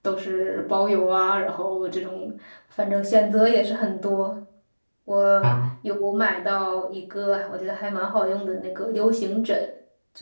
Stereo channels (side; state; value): both; inverted; correlation -1.00